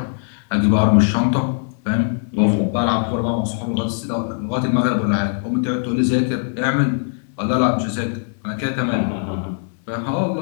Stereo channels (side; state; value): right; silent; 65 dB below the other